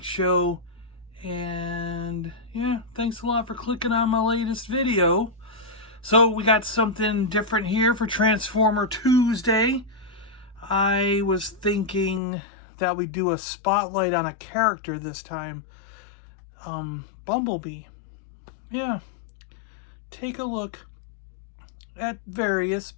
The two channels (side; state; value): right; drops out; at 12.2 s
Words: Show, and yeah, thanks a lot for clicking on my latest video. So we got something different here for Transformer Tuesday. I was thinking that we'd do a spotlight on a character this time. Bumblebee. Yeah, take a look at various